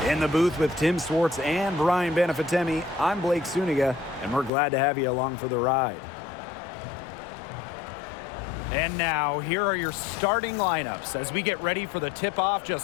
In the booth with Tim Swartz and Brian Benefitemi, I'm Blake Suniga, and we're glad to have you along for the ride. And now, here are your starting lineups as we get ready for the tip-off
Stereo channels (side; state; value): right; drops out; at 4.5 s